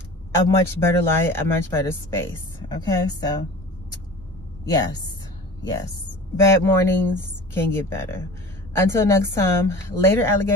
a much better light, a much better space. Okay, so yes. Bad mornings can get better. Until next time, later,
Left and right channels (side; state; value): both; normal; correlation 0.38